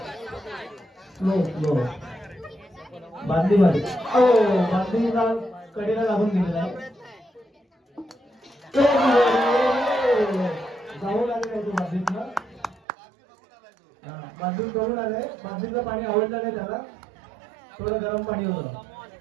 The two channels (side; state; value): left; drops out; at 12.8 s